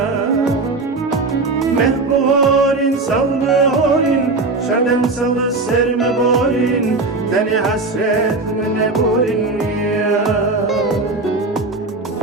Mehburin salburin Şerdem salı serme borin Teni hasret mine burin ya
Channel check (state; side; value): quieter; left; 3.5 dB